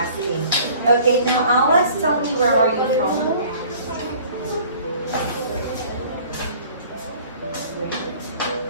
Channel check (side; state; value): both; inverted; correlation -0.50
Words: Okay, now Alex, tell me, where are you from?